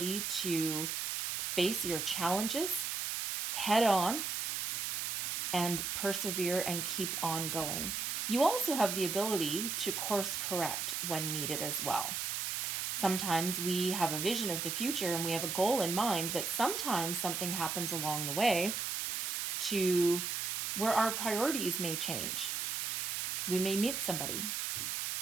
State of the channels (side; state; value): right; noise; hiss, 1 dB below the sound